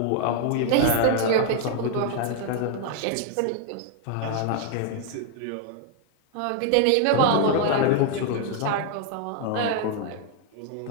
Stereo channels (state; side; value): different; both; correlation 0.00